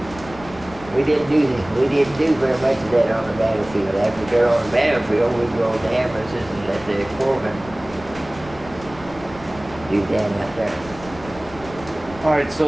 we didn't do very much of that on the battlefield. After we got on the battlefield, we'd go to ambulances and let the corpsmen do that out there. All right, so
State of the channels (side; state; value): left; noise; rumble, 18 dB below the sound